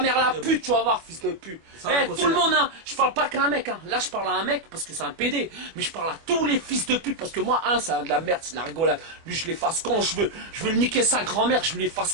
la pute, tu vas voir, fils de pute. Tout le monde, hein. Je parle pas qu'à un mec, hein. Là je parle à un mec parce que c'est un PD. Mais je parle à tous les fils de pute parce que moi, c'est de la merde, c'est de la rigolade. Lui je l'efface quand je veux. Je veux le niquer sa grand-mère, je l'efface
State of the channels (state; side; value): late; left; 25 ms